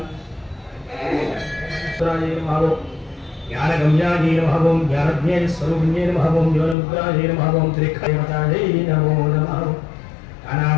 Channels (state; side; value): drops out; right; at 6.8 s